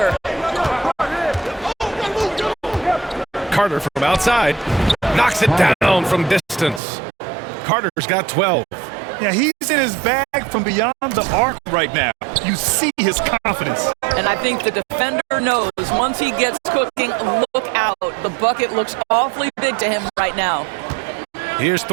Carter from outside. Knocks it down from distance. Carter's got 12. Yeah, he's in his bag from beyond the arc right now. You see his confidence. And I think the defender knows once he gets cooking, look out. The bucket looks awfully big to him right now. Here's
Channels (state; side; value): drops out; left; at 6.8 s